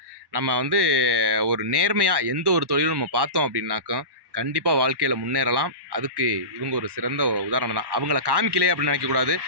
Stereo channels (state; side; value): late; left; 1.1 ms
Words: நம்ம வந்து ஒரு நேர்மையாக எந்த ஒரு தொழிலும் நம்ம பார்த்தோம் அப்படின்னாக்கா கண்டிப்பாக வாழ்க்கையில் முன்னேறலாம். அதுக்கு இவங்க ஒரு சிறந்த உதாரணம் தான். அவங்கள காமிக்கலையே அப்படின்னு நினைக்கக்கூடாது.